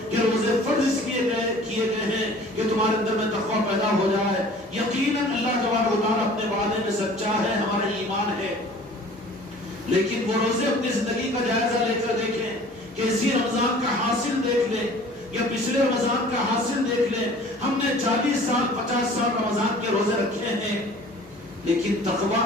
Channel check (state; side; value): normal; both; correlation 0.48